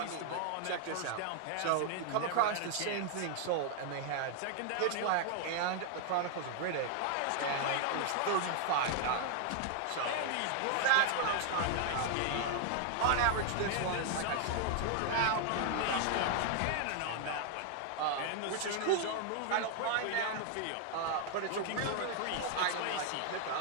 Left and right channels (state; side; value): different; both; correlation 0.00